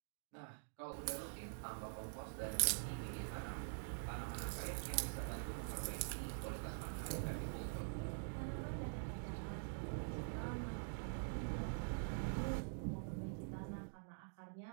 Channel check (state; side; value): silent; left; digital silence